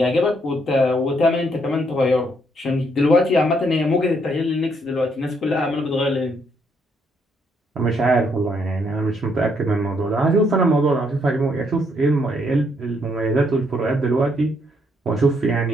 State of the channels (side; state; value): both; normal; correlation 0.72